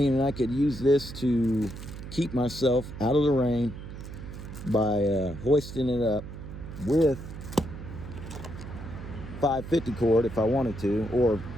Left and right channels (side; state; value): right; noise; hum, 11 dB below the sound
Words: I could use this to keep myself out of the rain by hoisting it up with 550 cord if I wanted to, or